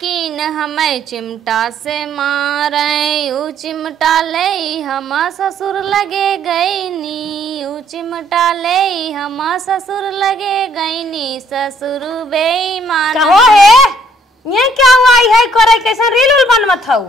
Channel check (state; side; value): normal; both; correlation 0.64